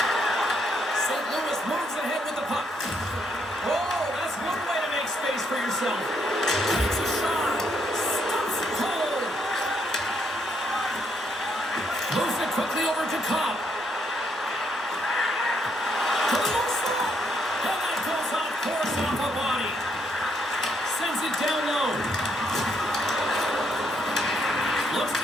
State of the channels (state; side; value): normal; both; correlation 0.74